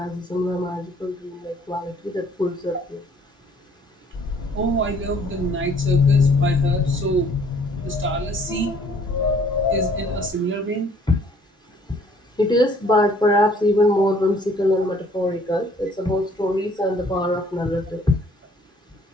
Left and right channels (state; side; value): normal; both; correlation 0.59